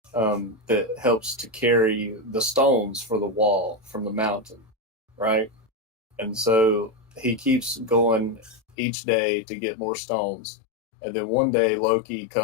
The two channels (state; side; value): drops out; right; at 8.8 s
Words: that helps to carry the stones for the wall from the mountain, right? And so he keeps going each day to get more stones. And then one day Loki